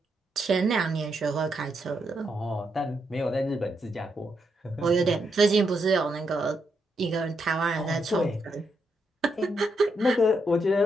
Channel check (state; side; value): normal; both; correlation 0.81